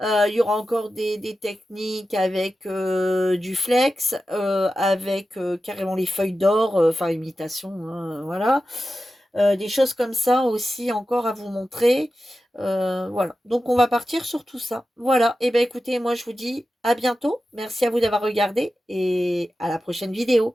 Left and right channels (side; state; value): both; normal; correlation 0.92